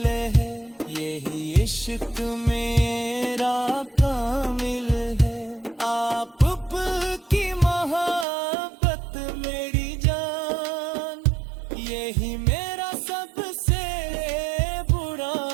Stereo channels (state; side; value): drops out; left; at 8.2 s